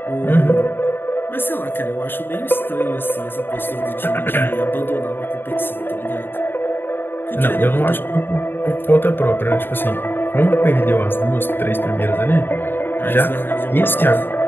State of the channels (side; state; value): right; late; 0.099 ms